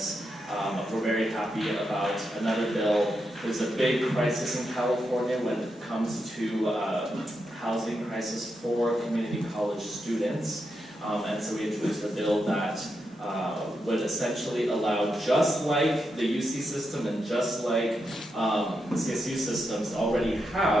We're very happy about another bill. There's a big crisis in California when it comes to housing crisis for community college students. And so we introduced a bill that would essentially allow, just like the UC system and just like the CSU systems already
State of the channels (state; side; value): normal; both; correlation 0.85